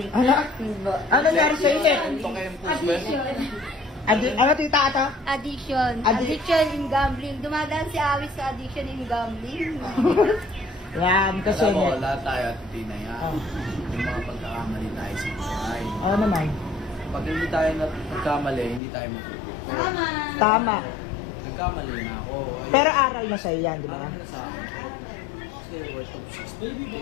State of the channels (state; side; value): drops out; right; at 18.8 s